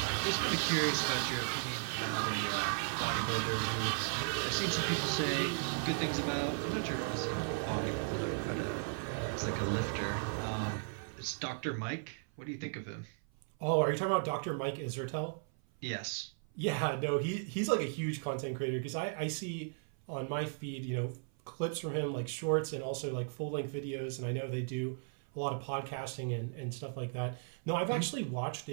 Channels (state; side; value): silent; left; 54 dB below the other